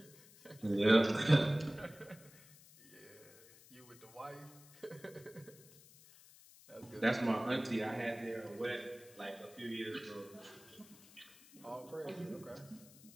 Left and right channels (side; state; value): left; noise; hiss, 22 dB below the sound